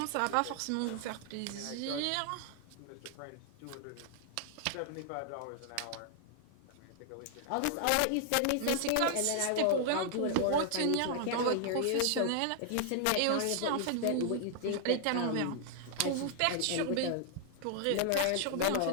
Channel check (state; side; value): different; both; correlation 0.00